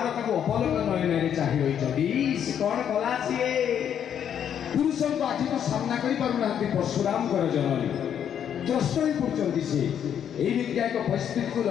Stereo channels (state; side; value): quieter; right; 9.0 dB